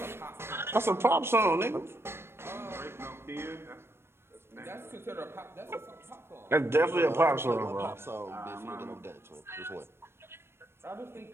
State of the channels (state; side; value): late; left; 0.12 ms